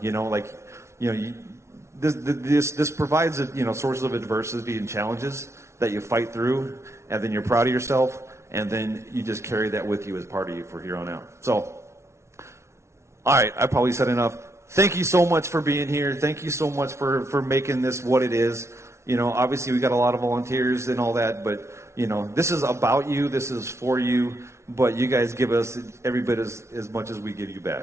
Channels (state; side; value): late; left; 0.13 ms